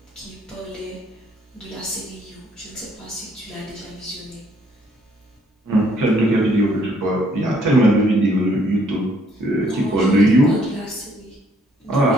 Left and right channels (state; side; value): normal; both; correlation 0.66